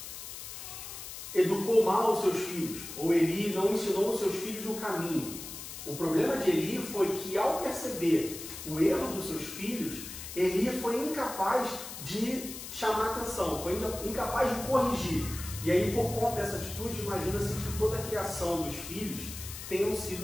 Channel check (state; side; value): noise; left; hiss, 10 dB below the sound